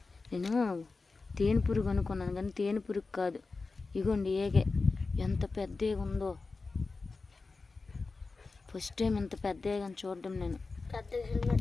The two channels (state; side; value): quieter; right; 4.0 dB